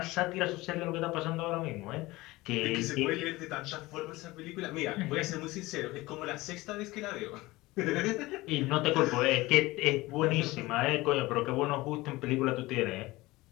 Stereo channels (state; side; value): quieter; right; 20.1 dB